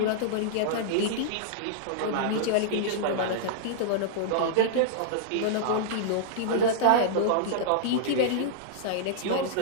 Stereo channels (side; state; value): both; different; correlation -0.02